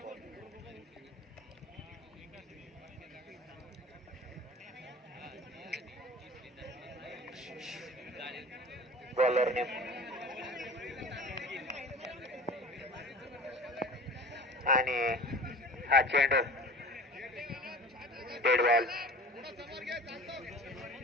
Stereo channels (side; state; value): both; normal; correlation 0.39